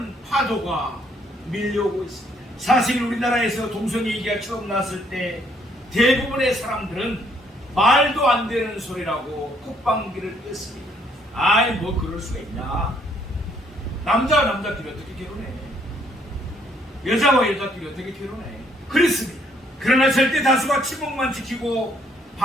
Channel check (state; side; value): normal; both; correlation 0.67